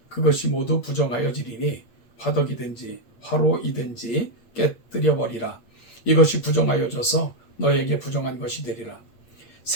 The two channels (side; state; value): right; late; 8.6 ms